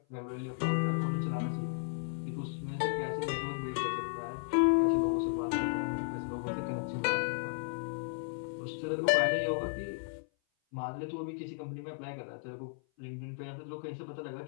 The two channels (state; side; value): silent; right; 55 dB below the other